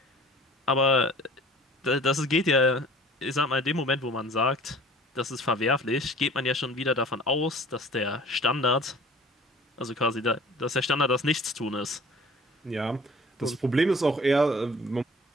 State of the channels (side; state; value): both; normal; correlation 0.47